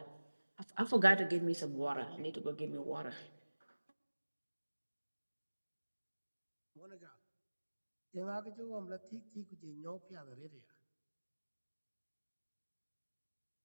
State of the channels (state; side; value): inverted; both; correlation -1.00